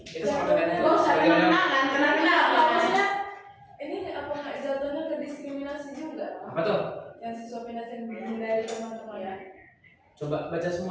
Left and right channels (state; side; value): identical; both; correlation 1.00